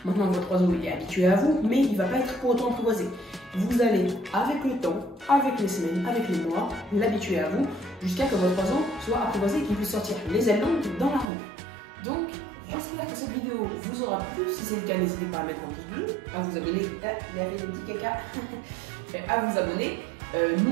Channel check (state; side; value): drops out; left; at 11.3 s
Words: Maintenant, votre oiseau il est habitué à vous, mais il ne va pas être pour autant apprivoisé. Vous allez, avec le temps, avec les semaines, avec les mois, l'habituer à vous, jusqu'à que votre oiseau soit apprivoisé et qu'il puisse sortir les ailes longues dans la rue. Donc, j'espère que cette vidéo vous aura plu. Si c'est le cas, n'hésitez pas à mettre un pouce bleu, à vous abonner, il y avait des petits caca, à vous abonner.